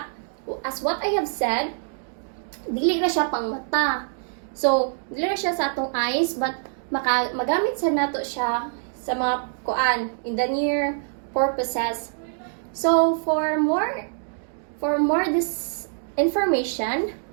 as what I have said, dili na siya pang mata. So, dili na siya sa atong eyes, but magamit sa nato siya sa mga kuan in the near purposes. So, for more this information,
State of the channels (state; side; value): silent; left; digital silence